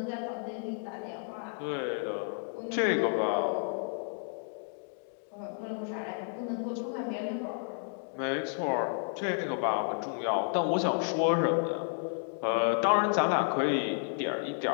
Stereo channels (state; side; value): silent; right; 57 dB below the other